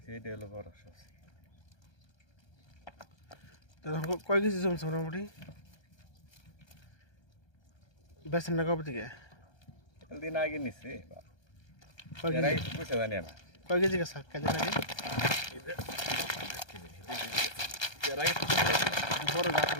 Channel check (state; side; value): late; right; 1.3 ms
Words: সেইটা হলো বড় সবচেয়ে তখন কয় কেজি জমছে মোটামুটি বেছেন না কবে থেকে দিন আগে নিছে কয় এর আগে কেজি তো পয়সা জানি না কয় কেজি গেছে কেজি নাকি এর আগে তো বড় গাছ